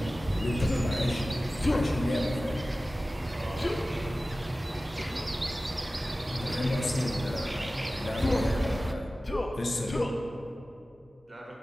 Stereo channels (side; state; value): both; normal; correlation 0.96